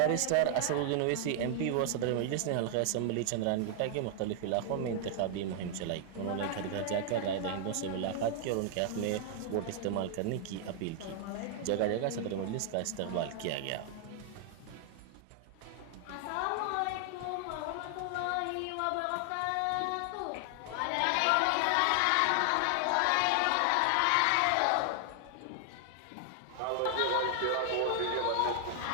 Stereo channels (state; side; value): different; both; correlation 0.00